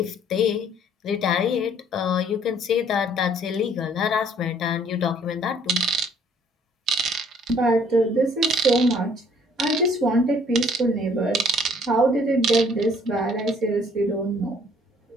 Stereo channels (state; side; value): normal; both; correlation 0.59